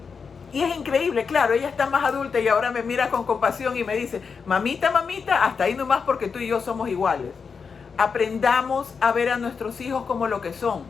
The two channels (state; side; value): quieter; right; 5.6 dB